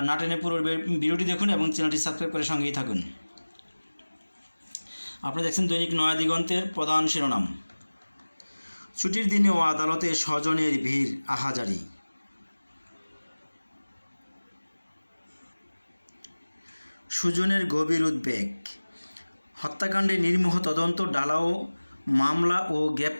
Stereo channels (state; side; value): inverted; both; correlation -1.00